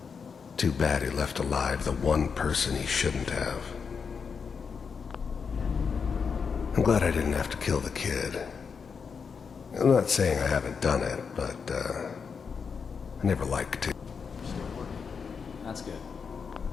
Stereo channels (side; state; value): right; quieter; 5.9 dB